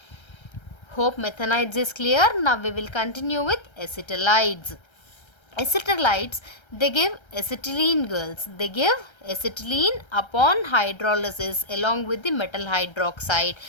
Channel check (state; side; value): late; right; 1.3 ms